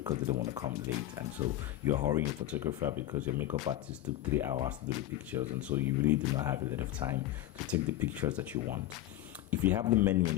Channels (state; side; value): quieter; right; 14.1 dB